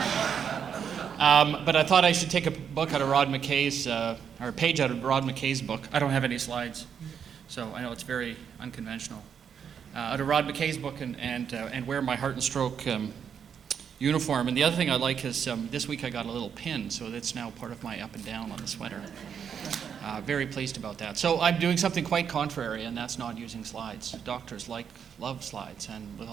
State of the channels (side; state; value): left; quieter; 7.6 dB